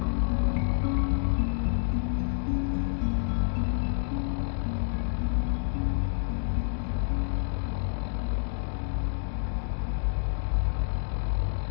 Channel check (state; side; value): silent; right; digital silence